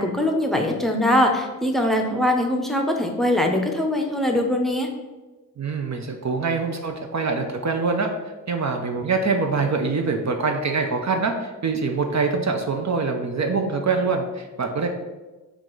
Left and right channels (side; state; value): both; normal; correlation 0.28